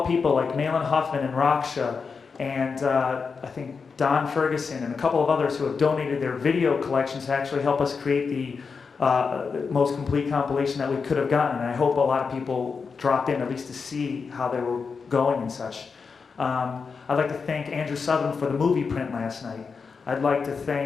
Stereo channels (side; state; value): right; quieter; 5.3 dB